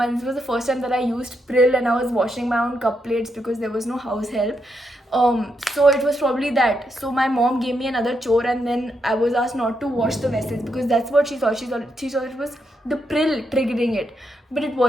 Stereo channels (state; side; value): normal; both; correlation 0.81